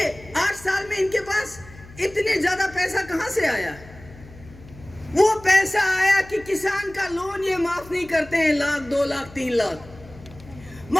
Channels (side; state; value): left; noise; hum, 20 dB below the sound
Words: 8 साल में इनके पास इतने ज्यादा पैसा कहां से आया? वो पैसा आया कि किसान का लोन ये माफ नहीं करते हैं, 1 लाख, 2 लाख, 3 लाख।